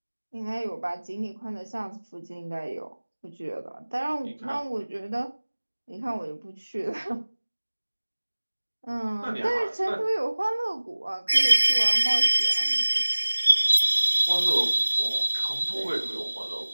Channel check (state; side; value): inverted; both; correlation -1.00